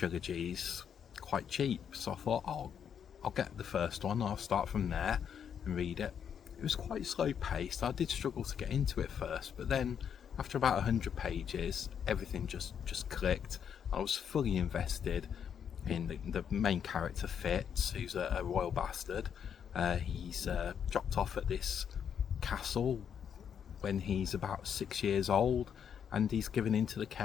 quite cheap, so I thought, I'll get the first one, I'll start from there and read it. It was quite slow paced. I did struggle to get into it first, but then after about 100 pages everything just clicked. I was fully invested in the main character, Fitz, who's a royal bastard. He's dropped off at this castle when he's about 6 years old, and he's given into the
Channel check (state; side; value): quieter; right; 8.1 dB